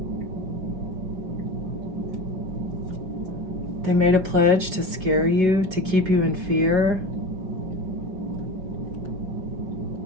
They made a pledge to scare you, to keep you in fear.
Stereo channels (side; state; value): left; late; 5.4 ms